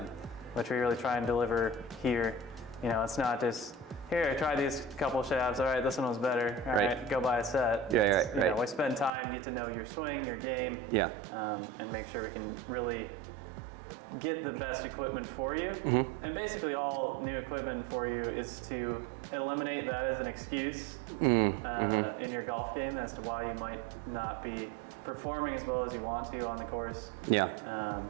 which we really try and deliver here. You know, it's not just, here, try these couple shafts. All right, this one was better. All right, go buy a set. Yeah, You know, we spend time, get to know your swing, your game, and make sure we can really get the best equipment for you. And basically all new equipment for you is to eliminate that as an excuse in your golf game as to why you might not be performing as well as you want to on the course.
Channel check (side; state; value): left; drops out; at 9.1 s